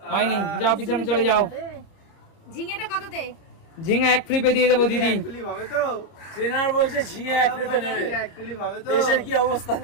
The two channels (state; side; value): late; right; 30 ms